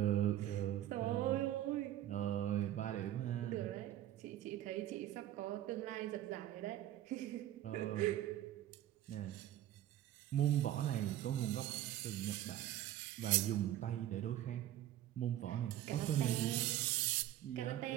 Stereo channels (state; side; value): quieter; left; 12.9 dB